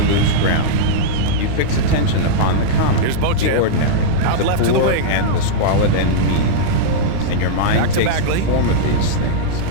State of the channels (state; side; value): different; both; correlation -0.03